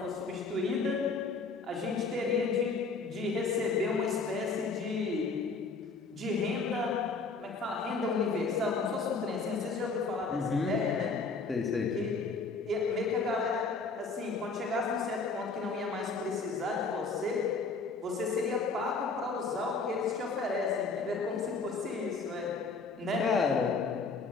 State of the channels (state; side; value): quieter; right; 4.3 dB